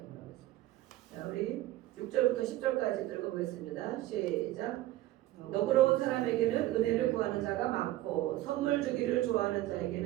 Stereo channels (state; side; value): quieter; left; 15.8 dB